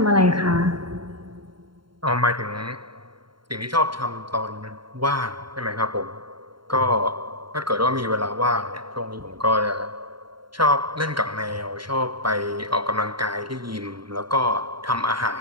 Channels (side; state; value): left; late; 0.73 ms